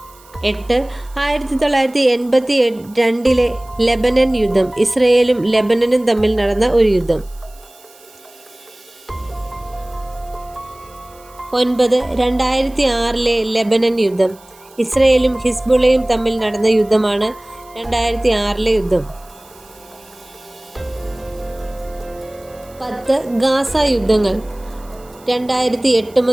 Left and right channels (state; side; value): noise; right; hiss, 26 dB below the sound